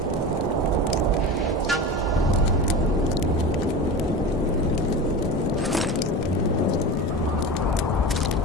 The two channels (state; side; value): normal; both; correlation 0.28